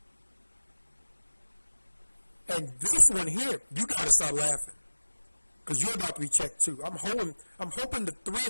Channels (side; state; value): both; inverted; correlation -1.00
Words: And this one here, you got to start laughing, because you're about to be checked too. I'm hoping the three